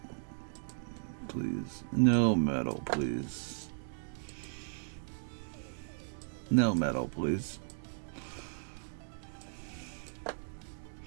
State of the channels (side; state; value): left; silent; digital silence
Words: please. No metal, please. No metal, please.